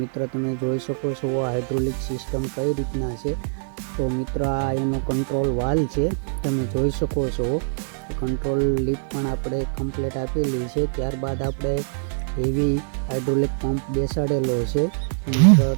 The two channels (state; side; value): silent; left; digital silence